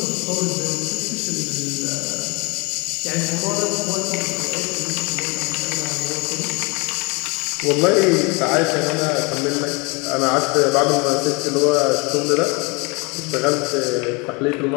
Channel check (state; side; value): quieter; right; 28.8 dB